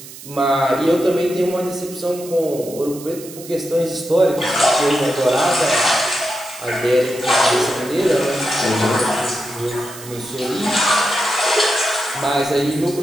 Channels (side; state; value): right; noise; hiss, 15 dB below the sound